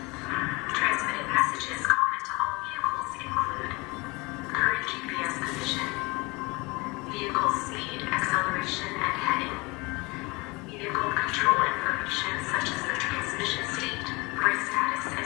Transmitted messages common to all vehicles include current GPS position, vehicle speed, acceleration, and heading, vehicle control information such as the transmission state, brake status, and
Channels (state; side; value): quieter; right; 25.3 dB